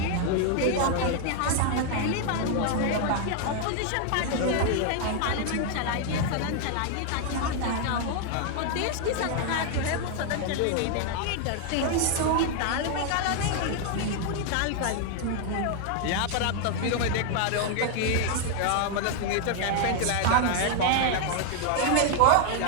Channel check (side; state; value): both; different; correlation 0.00